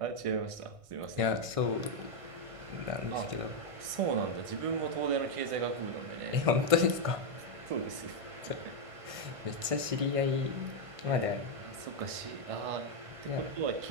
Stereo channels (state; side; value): late; left; 1.5 ms